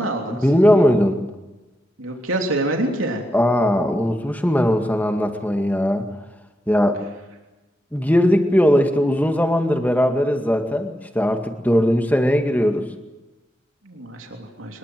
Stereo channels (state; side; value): normal; both; correlation 0.86